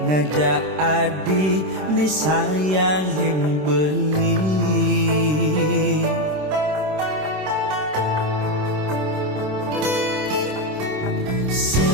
ngajak adi ni sayangin beli.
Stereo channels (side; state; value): left; late; 26 ms